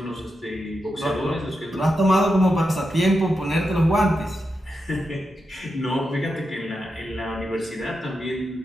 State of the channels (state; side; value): normal; both; correlation 0.87